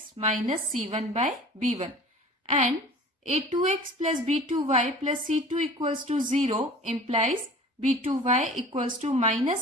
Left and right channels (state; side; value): normal; both; correlation 0.43